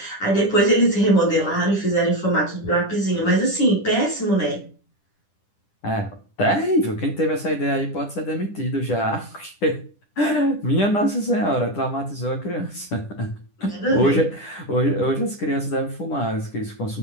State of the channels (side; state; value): right; late; 10 ms